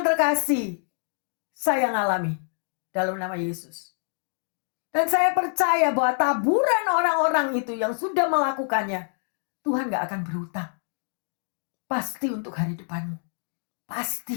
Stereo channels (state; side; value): silent; right; 61 dB below the other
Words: terkasih. Saya ngalami dalam nama Yesus. Dan saya percaya bahwa taburan orang-orang itu yang sudah melakukannya, Tuhan gak akan berhutang. Pasti untuk hari depanmu.